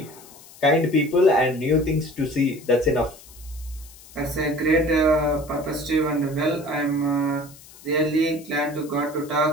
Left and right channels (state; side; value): noise; left; hiss, 21 dB below the sound